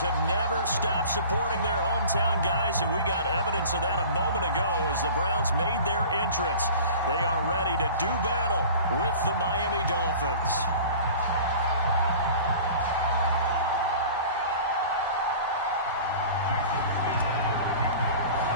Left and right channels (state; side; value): inverted; both; correlation -0.41